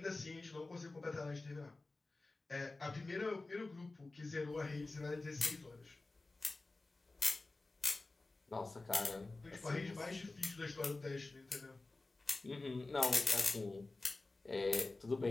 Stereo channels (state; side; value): quieter; right; 3.3 dB